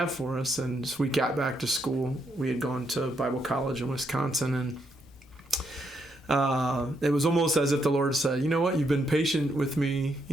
for us. And so we got back to school. We had gone to Bible college in Wisconsin, and it was almost as if the Lord said, you know what, you've been patient with me.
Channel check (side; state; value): both; normal; correlation 0.77